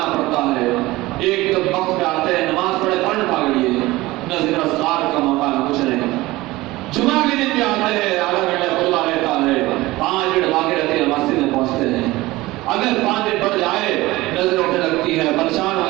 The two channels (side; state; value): left; quieter; 19.2 dB